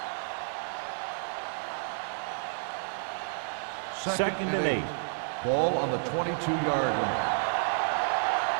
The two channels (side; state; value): left; silent; 58 dB below the other